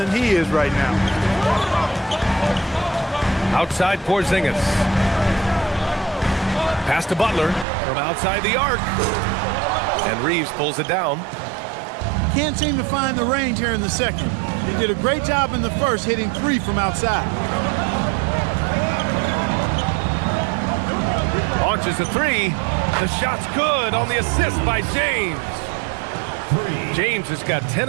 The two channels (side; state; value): left; drops out; at 7.7 s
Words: he is right now. Outside Porzingis. Pass to Butler from outside the arc. And Reeves pulls it down. Can't seem to find the range here in the second. He did a great job in the first, hitting 3 from outside. Launches a 3. The shot's good on the assist by James. James has got 10